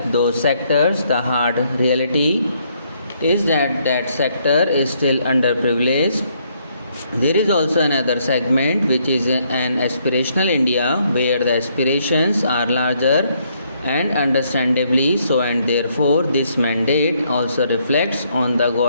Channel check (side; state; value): both; inverted; correlation -0.71